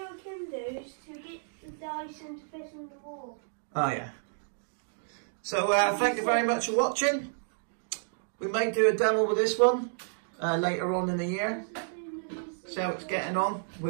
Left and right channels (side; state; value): left; silent; digital silence